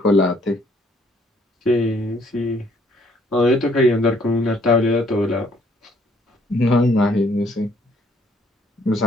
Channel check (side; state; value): both; normal; correlation 0.65